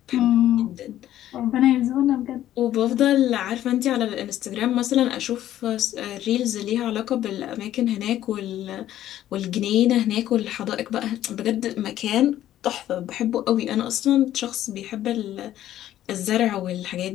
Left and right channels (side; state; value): right; quieter; 12.6 dB